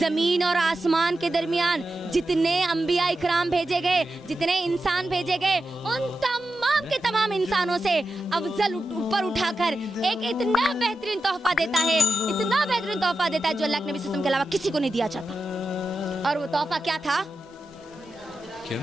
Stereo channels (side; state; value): both; normal; correlation 0.90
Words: और आसमान के दरमियान जितने अंबिया इकराम भेजे गए, जितने इंसान भेजे गए, उन तमाम के तमाम इंसानों से अफजल ऊपर उठाकर एक इतना बेहतरीन तोहफा देता है, इतना बेहतरीन तोहफा देता है जो अल्लाह के नबी सल्लल्लाहु अलैहि वसल्लम के अलावा किसी को नहीं दिया जाता। और वो तोहफा क्या था?